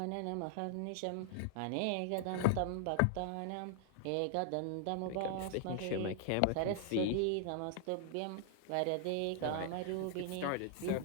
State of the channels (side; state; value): both; different; correlation 0.00